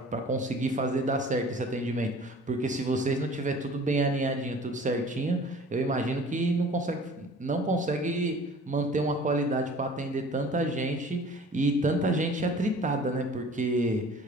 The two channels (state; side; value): normal; both; correlation 0.47